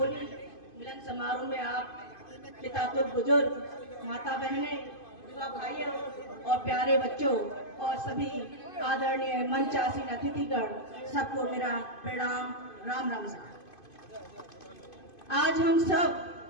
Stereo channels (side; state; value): right; late; 2.5 ms